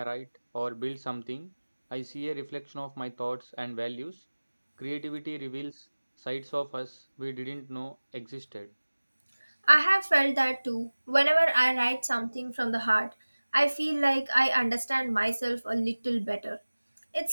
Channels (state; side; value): inverted; both; correlation -1.00